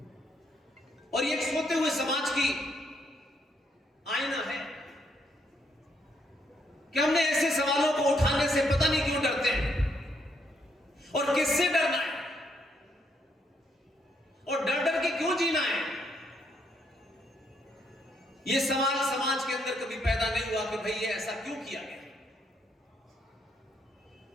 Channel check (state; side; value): normal; both; correlation 0.74